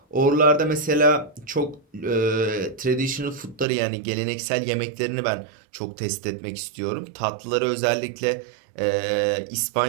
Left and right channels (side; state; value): left; drops out; at 3.7 s